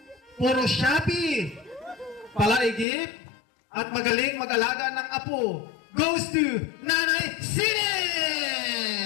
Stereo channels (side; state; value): right; drops out; at 2.9 s